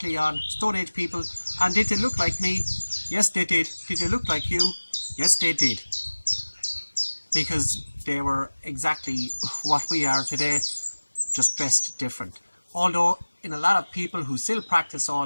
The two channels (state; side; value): inverted; both; correlation -1.00